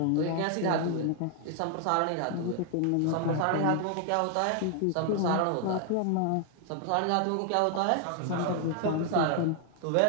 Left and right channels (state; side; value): different; both; correlation 0.00